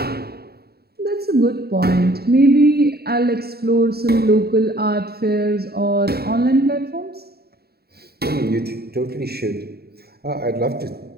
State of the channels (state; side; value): late; left; 0.46 ms